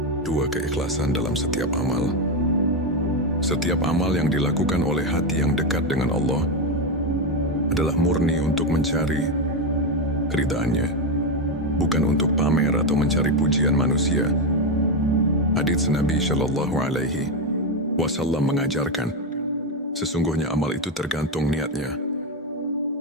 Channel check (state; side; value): normal; both; correlation 0.09